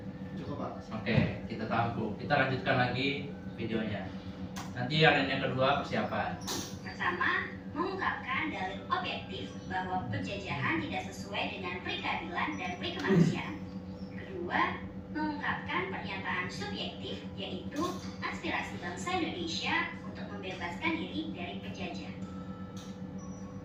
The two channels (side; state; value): both; identical; correlation 1.00